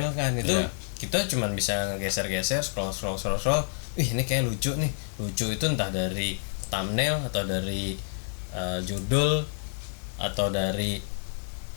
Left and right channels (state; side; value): silent; right; digital silence